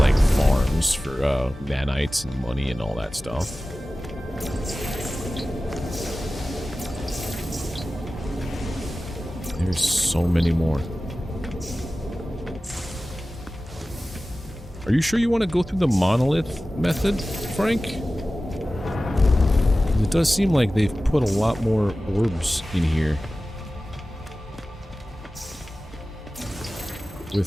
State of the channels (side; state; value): both; normal; correlation 0.96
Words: farms for nanites and money and all that stuff. There's so many more. Are you sure you want to go through the monolith method, Frank? It does seem like they've put a lot more orbs in here.